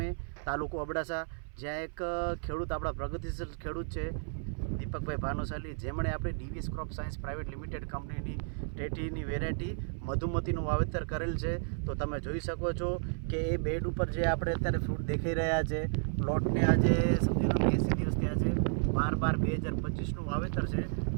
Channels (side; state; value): left; silent; 56 dB below the other